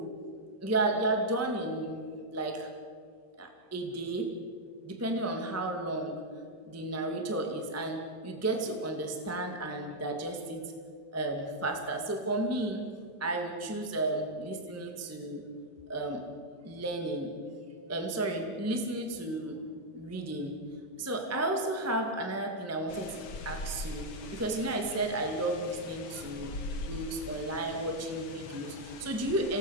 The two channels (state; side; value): normal; both; correlation -0.02